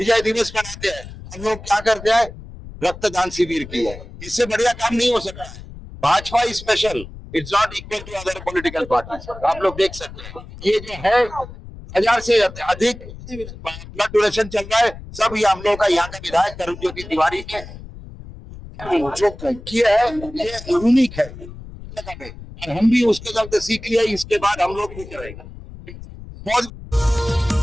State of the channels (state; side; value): noise; left; rumble, 14 dB below the sound